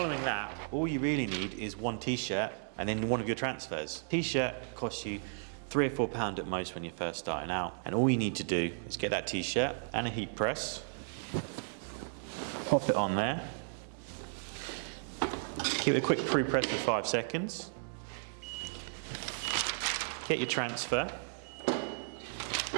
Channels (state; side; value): silent; left; digital silence